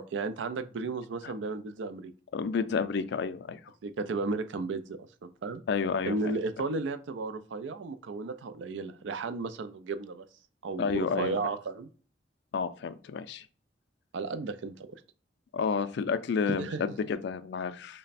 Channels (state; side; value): normal; both; correlation 0.06